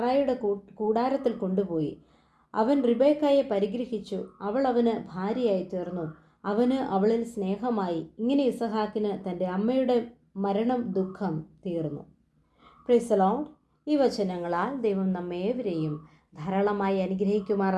കൂടാരത്തിൽ കൊണ്ടുപോയി. അവൻ റിബേക്കായെ പരിഗ്രഹിച്ചു. അവൾ അവന് ഭാര്യയായി തീർന്നു. അവന് അവളിൽ സ്നേഹമായി. ഇങ്ങനെ ഇസഹാക്കിന് തൻ്റെ അമ്മയുടെ മരണം ദുഃഖം തീർന്നു. Praise the Lord. ഈ വചനങ്ങളാൽ ദൈവം നമ്മേവരെയും ധാരാളമായി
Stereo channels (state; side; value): identical; both; correlation 1.00